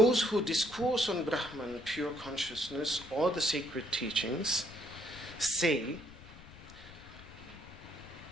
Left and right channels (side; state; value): left; noise; rumble, 19 dB below the sound